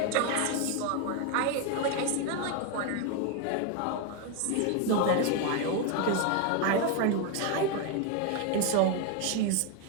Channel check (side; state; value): both; different; correlation 0.01